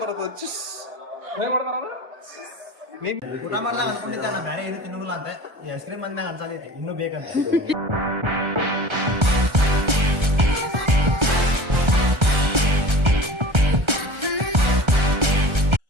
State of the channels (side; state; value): left; late; 1.3 ms